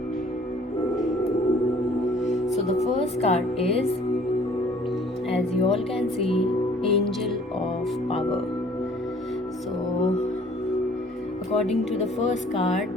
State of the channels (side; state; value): both; normal; correlation 0.54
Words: So the first card is, as you all can see, Angel of Power. So according to the first